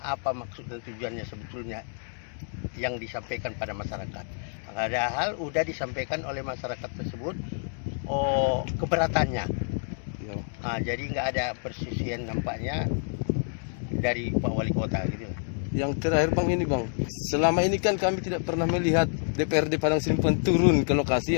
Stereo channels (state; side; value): silent; right; digital silence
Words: apa maksud dan tujuannya sebetulnya yang disampaikan pada masyarakat. Padahal udah disampaikan oleh masyarakat tersebut keberatannya. Ya. Jadi nggak ada persisian nampaknya dari Pak Wali Kota gitu. Yang terakhir Bang ini Bang, selama ini kan kami tidak pernah melihat DPRD Padang Sidimpuan turun ke